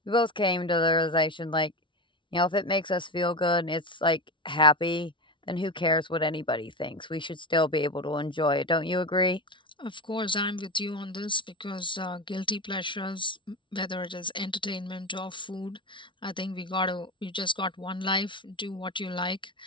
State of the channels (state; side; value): late; right; 0.24 ms